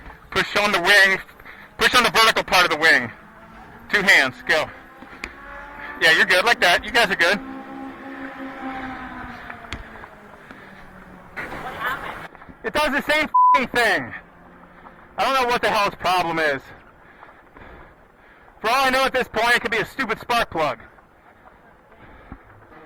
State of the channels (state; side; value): identical; both; correlation 1.00